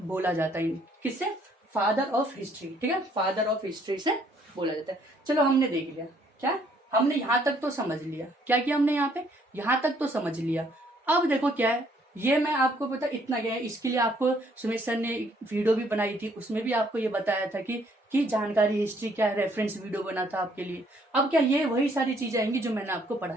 बोला जाता है किससे, फादर ऑफ हिस्ट्री। ठीक है, फादर ऑफ हिस्ट्री से बोला जाता है। चलो हमने देख लिया, क्या हमने यहाँ तक तो समझ लिया, क्या किया हमने यहाँ पे, यहाँ तक तो समझ लिया। अब देखो क्या है, ये मैं आपको पता इतना गया है, इसके लिए आपको सुमित सर ने वीडियो भी बनाई थी, उसमें भी आपको ये बताया था कि जानकारी हिस्ट्री क्या है, रेफरेंस वीडियो बना था आपके लिए। अब क्या ये वही सारी चीजें आएंगी जो मैंने आपको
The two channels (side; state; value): both; normal; correlation 0.65